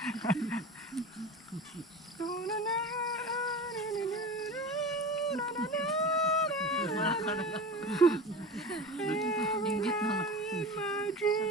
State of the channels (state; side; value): normal; both; correlation 0.32